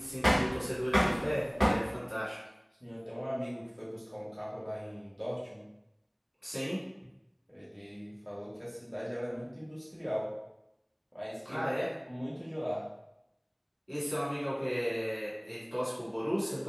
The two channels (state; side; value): identical; both; correlation 1.00